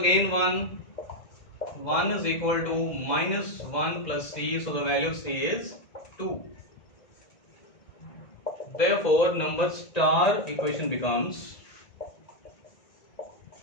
1. 1 is equal to minus 1 plus c, so the value of c is 2. Therefore, number star equation becomes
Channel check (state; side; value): late; right; 1.9 ms